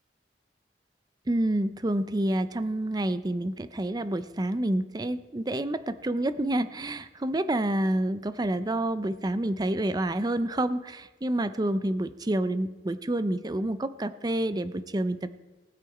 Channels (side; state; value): both; normal; correlation 0.82